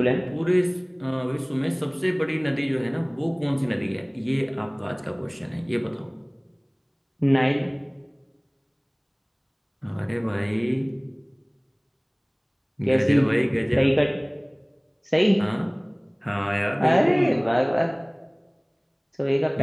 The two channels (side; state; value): both; identical; correlation 1.00